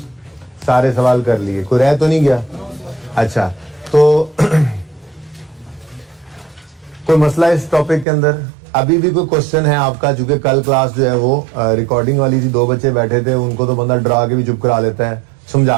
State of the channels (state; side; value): drops out; left; at 8.1 s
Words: सारे सवाल कर लिए, कोई रह तो नहीं गया? अच्छा, तो कोई मसला इस टॉपिक के अंदर? अभी भी कोई क्वेश्चन है आपका? चूंकि कल क्लास जो है वो रिकॉर्डिंग वाली थी, 2 बच्चे बैठे थे, उनको तो बंदा डरा के भी चुप करा लेता है,